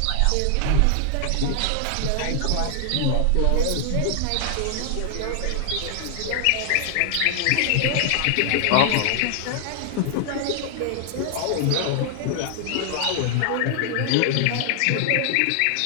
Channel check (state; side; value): different; both; correlation 0.00